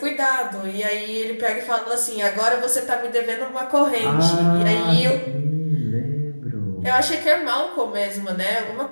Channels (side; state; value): both; inverted; correlation -1.00